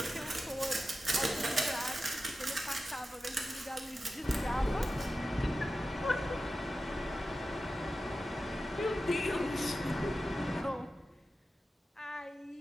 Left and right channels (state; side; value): normal; both; correlation 0.93